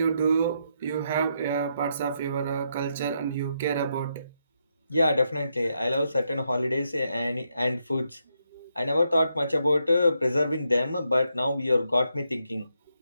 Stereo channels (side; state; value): both; inverted; correlation -0.80